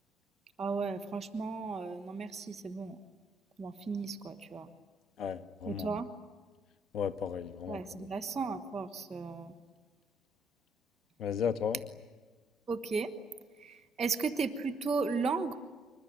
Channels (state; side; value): normal; both; correlation 0.70